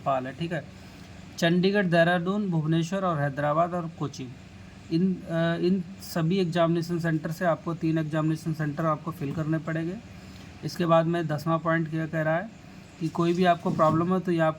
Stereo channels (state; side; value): identical; both; correlation 1.00